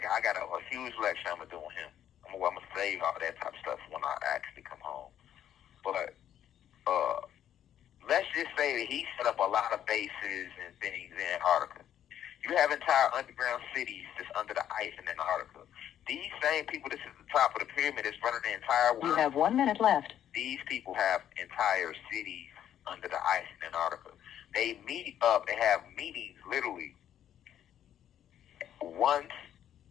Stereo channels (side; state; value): right; quieter; 10.5 dB